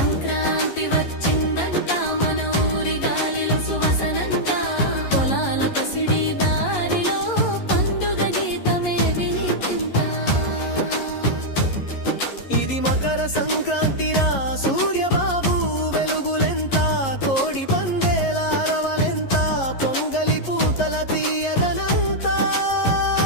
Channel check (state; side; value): late; right; 11 ms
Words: వచ్చిందంట మన ఊరి గాలిలో సువాసనంట పొలాల పసిడి దారిలో పండుగ గీతమే వినిపింత ఇది మకర సంక్రాంతిరా సూర్యబాబు వెలుగులెంత కోడి పందేల అరవలెంత పొంగలి పూతల తీయదనంతా